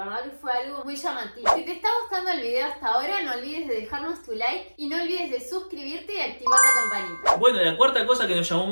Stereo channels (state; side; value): inverted; both; correlation -1.00